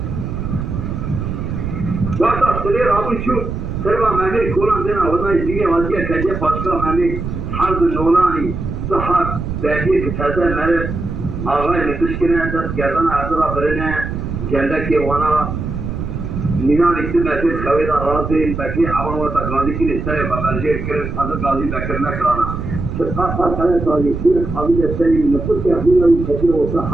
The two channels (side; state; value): right; noise; rumble, 5 dB below the sound